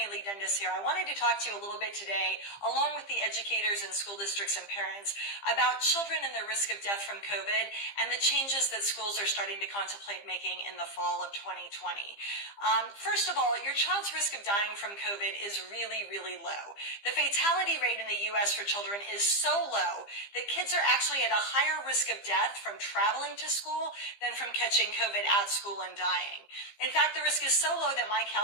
Lee Dundas here. I wanted to talk to you a little bit today, along with the educators and school districts and parents, about children and their risk of death from COVID and the changes that schools are starting to contemplate making in the fall of 2020. First of all, your child's risk of dying from COVID is really, really low. The fatality rate in the U.S. for children is so low that kids are actually at a higher risk of death from traveling to school than from catching COVID at school and dying. In fact, the risk is so low that my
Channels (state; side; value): late; right; 15 ms